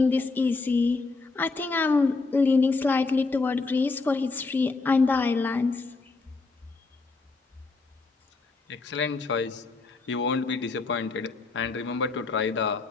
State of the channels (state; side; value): quieter; right; 3.9 dB